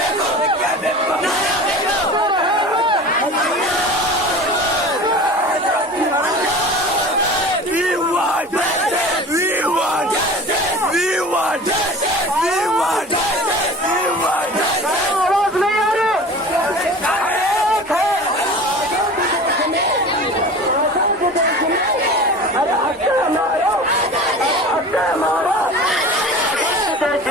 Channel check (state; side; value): normal; both; correlation 0.37